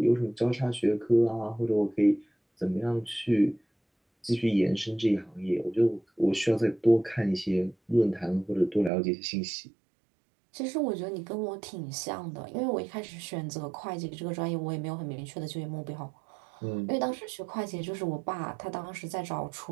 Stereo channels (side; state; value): left; drops out; at 8.9 s